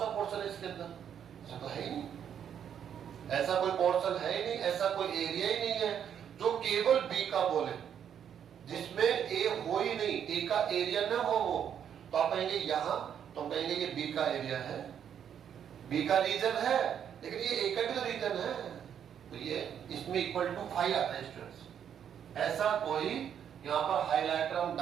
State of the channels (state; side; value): quieter; left; 8.8 dB